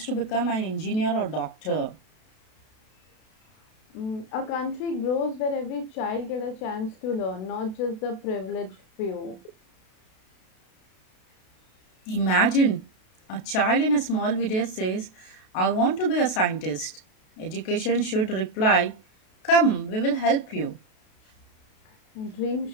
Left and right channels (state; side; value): late; right; 32 ms